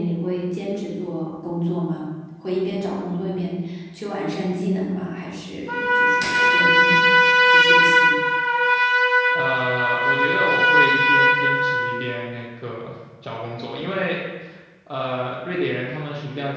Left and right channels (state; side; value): identical; both; correlation 1.00